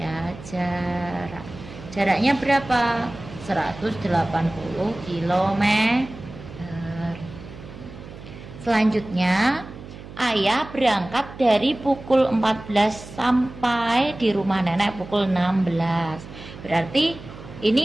jarak. Jaraknya berapa? 180 km. Selanjutnya, ayah berangkat dari pukul 14 sampai di rumah nenek pukul 16. Berarti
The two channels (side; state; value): right; noise; hum, 15 dB below the sound